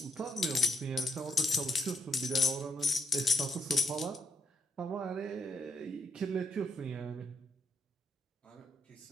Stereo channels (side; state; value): both; normal; correlation 0.75